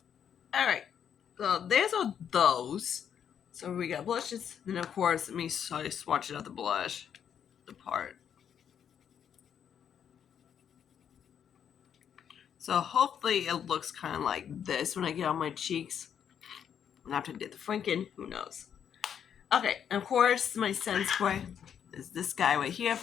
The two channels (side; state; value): right; quieter; 8.5 dB